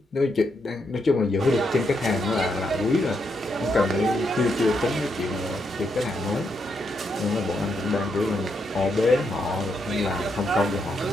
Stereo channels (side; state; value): both; normal; correlation 0.80